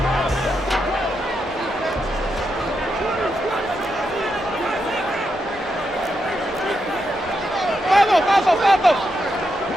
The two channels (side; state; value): both; normal; correlation 0.83